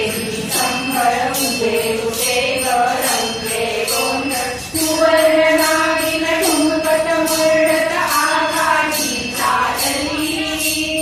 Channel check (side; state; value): both; identical; correlation 1.00